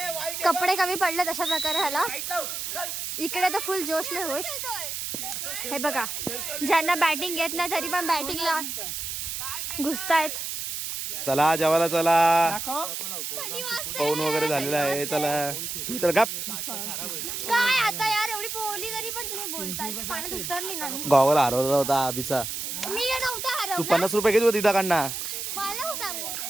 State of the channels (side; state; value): right; noise; hiss, 5 dB below the sound